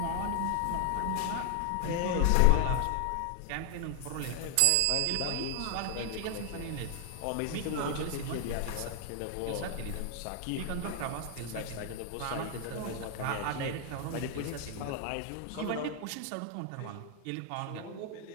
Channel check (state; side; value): different; both; correlation 0.00